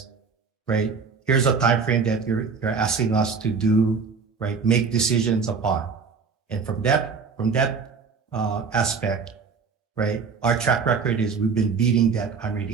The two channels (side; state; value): left; quieter; 5.3 dB